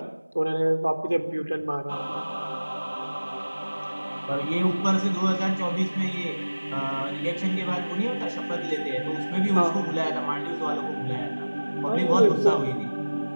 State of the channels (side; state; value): both; inverted; correlation -1.00